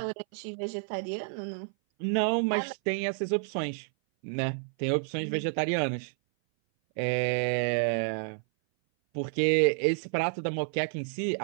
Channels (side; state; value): left; silent; 57 dB below the other